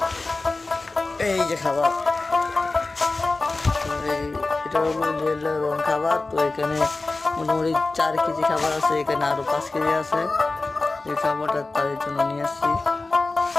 এই যে খাবার। এটা হলো লেয়ার ওয়ান খাবার। তো এখানে মোটামুটি 4 কেজি খাবার আছে, এখানে আরো 5 কেজি আছে। এই খাবারটা তাদের জন্য নিয়ে আসছি।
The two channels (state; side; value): quieter; right; 3.4 dB